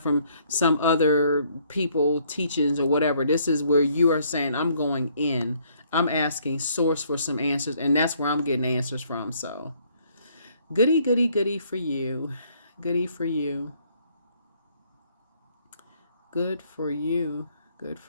some other people, teachings or whatever. This is where you are saying, I'm going in. I'm asking source for some answers. And that's where I'm getting answers from. So goody, goody, goody for you. Goody for you. Good for you. Good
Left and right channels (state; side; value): inverted; both; correlation -0.66